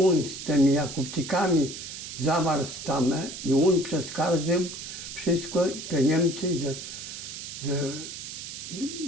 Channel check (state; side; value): noise; right; hiss, 9 dB below the sound